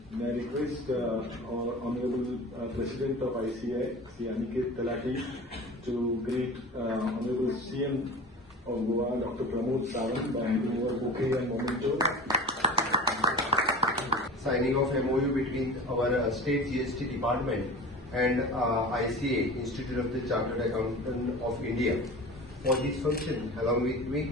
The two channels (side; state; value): both; normal; correlation 0.35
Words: May I request our Honorable President of ICAI, Sri Aniket Talati, to greet Honorable CM of Goa, Dr. Pramod Sawant, by handing over bouquet and memento. Signing of MOU between our state GST department and ICAI, Institute of the Chartered Accountant of India. For this function, along with